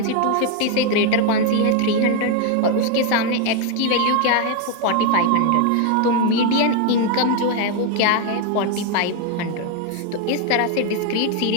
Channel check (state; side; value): different; both; correlation 0.01